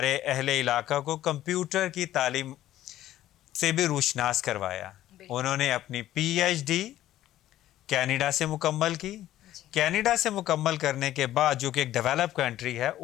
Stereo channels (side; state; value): right; quieter; 13.6 dB